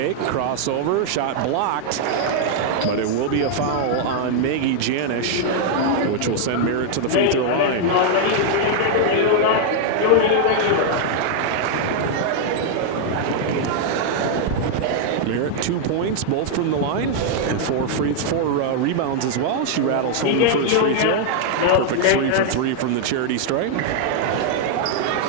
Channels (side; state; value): both; different; correlation 0.00